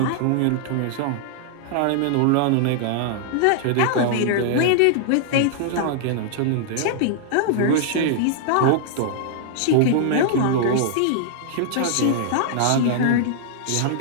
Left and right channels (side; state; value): both; different; correlation -0.01